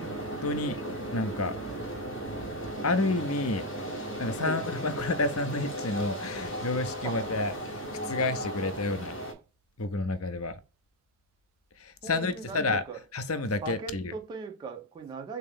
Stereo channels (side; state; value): both; normal; correlation 0.04